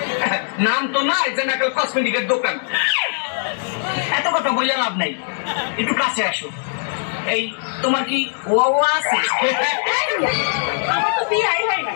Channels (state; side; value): silent; right; digital silence